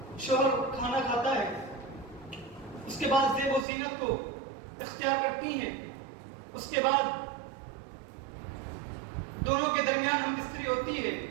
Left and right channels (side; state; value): left; drops out; at 3.7 s